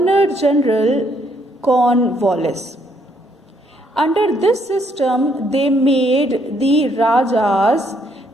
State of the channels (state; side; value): normal; both; correlation 0.70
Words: General Cornwallis. Under this system, they made the Rajas